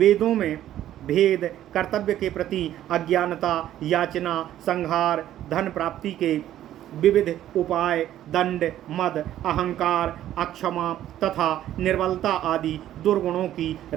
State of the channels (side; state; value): left; quieter; 12.3 dB